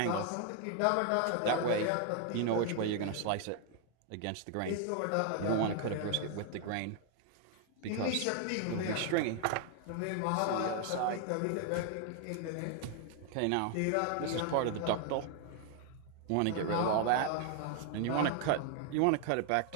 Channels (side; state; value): both; different; correlation 0.00